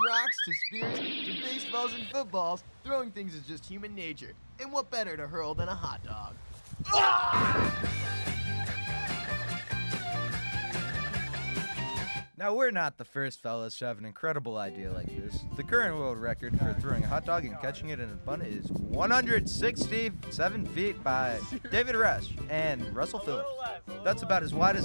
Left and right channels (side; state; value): both; inverted; correlation -1.00